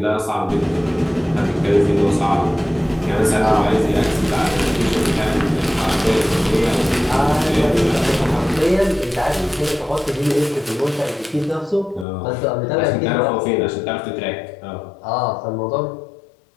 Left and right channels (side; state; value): right; drops out; at 12.1 s